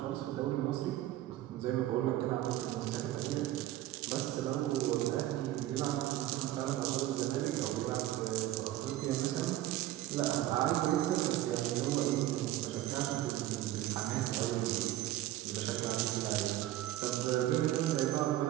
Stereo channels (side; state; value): left; quieter; 14.4 dB